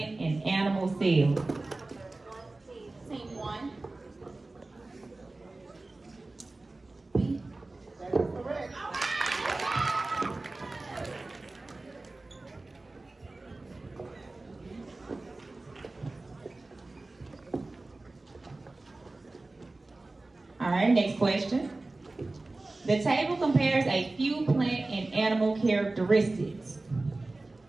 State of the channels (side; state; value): left; quieter; 3.1 dB